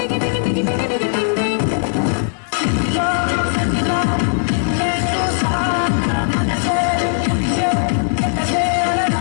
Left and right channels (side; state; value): right; silent; digital silence